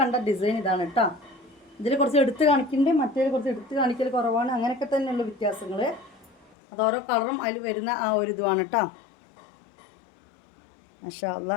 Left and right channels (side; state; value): right; drops out; at 6.5 s